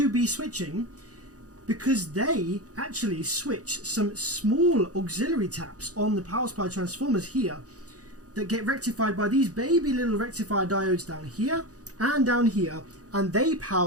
be switching, because they actually switch some small auxiliary taps on the power supply transformers here that get rectified by these baby little rectifier diodes down here and down here, and they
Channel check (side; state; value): left; late; 0.67 ms